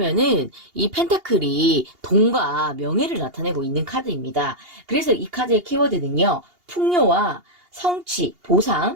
이 펜타클이 돈과 명예를 나타내고 있는 카드입니다. 그래서 이 카드의 키워드는요, 풍요와 성취,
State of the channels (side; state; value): left; late; 2.8 ms